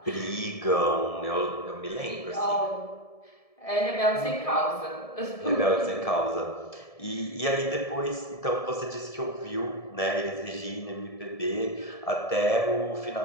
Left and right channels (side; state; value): right; late; 1.7 ms